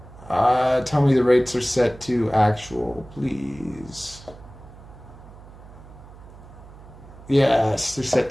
Tell me the rates are set to actual, please. Yes, they're set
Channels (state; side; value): noise; right; hum, 19 dB below the sound